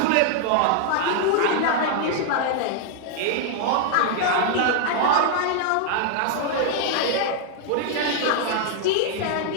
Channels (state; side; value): different; both; correlation 0.00